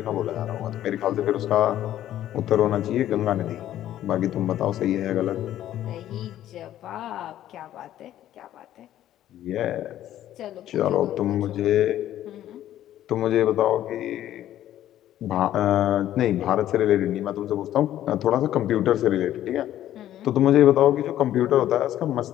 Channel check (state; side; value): quieter; right; 12.4 dB